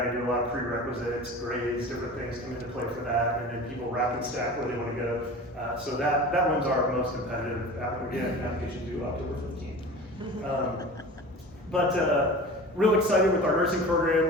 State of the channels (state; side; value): normal; both; correlation 0.36